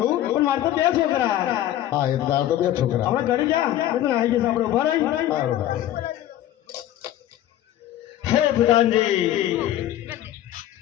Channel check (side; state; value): right; quieter; 12.8 dB